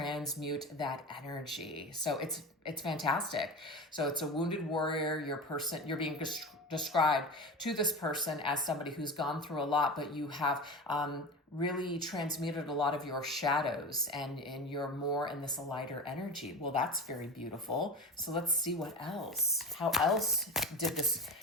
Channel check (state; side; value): normal; both; correlation 0.27